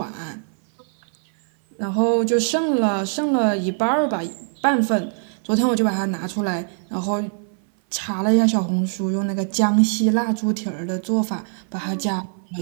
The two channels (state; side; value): silent; left; 59 dB below the other